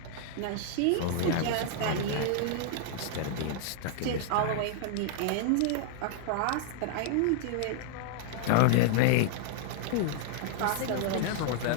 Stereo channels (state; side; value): different; both; correlation -0.01